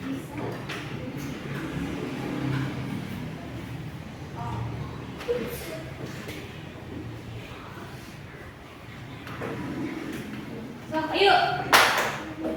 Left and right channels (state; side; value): identical; both; correlation 1.00